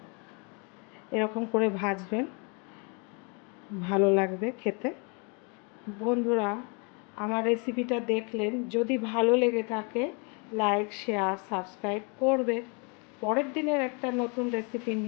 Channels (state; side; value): quieter; right; 34.2 dB